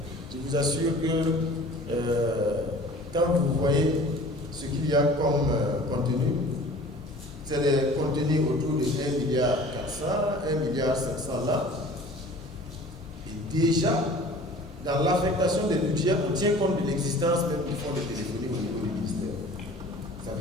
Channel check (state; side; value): normal; both; correlation 0.45